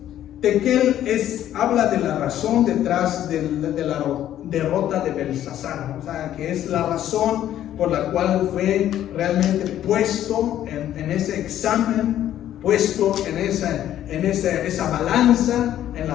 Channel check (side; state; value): right; quieter; 11.8 dB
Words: Tekel habla de la razón detrás de la derrota de Belsasar, o sea, que es la razón por la cual fue realmente puesto en ese examen, puesto en esa balanza en